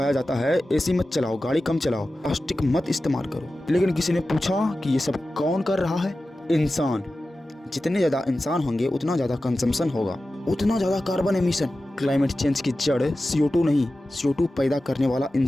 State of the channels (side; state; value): both; normal; correlation 0.94